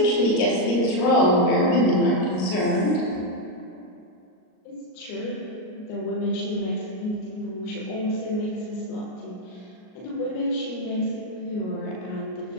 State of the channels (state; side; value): late; right; 38 ms